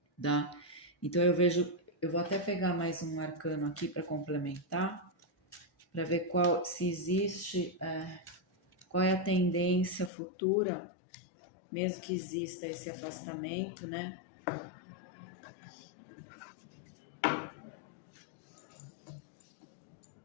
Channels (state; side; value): drops out; right; at 10.1 s